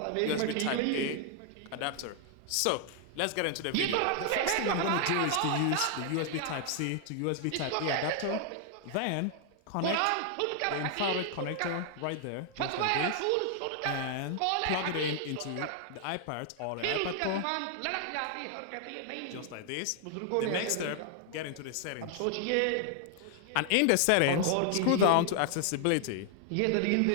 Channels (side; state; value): both; different; correlation 0.00